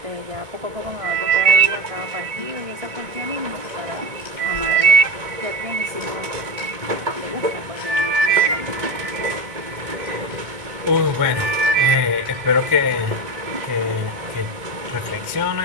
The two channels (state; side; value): late; left; 1.9 ms